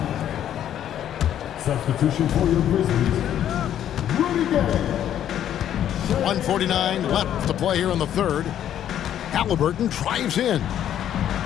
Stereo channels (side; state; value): right; quieter; 10.6 dB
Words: Substitution for your Grizzlies. Rudy Gay. 1:49 left to play here in the third. Halliburton drives in.